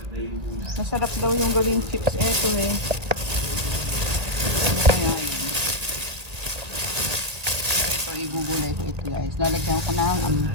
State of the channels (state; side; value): late; left; 2.0 ms